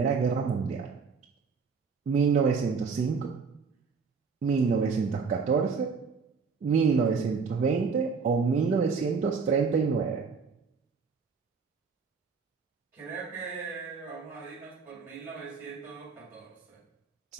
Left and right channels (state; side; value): quieter; left; 5.3 dB